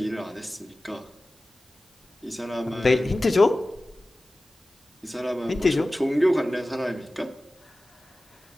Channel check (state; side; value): normal; both; correlation 0.96